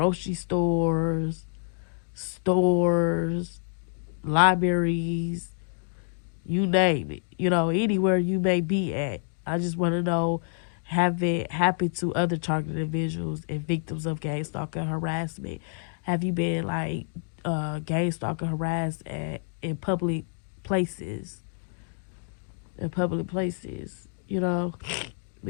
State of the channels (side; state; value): right; silent; digital silence